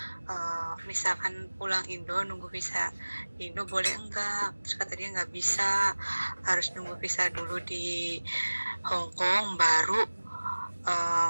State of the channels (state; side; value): inverted; both; correlation -1.00